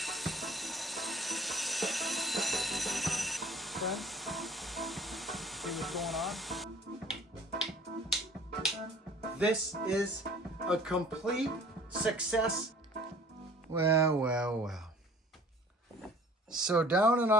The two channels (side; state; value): both; normal; correlation 0.50